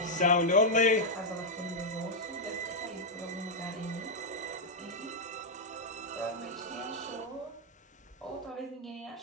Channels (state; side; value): normal; both; correlation -0.03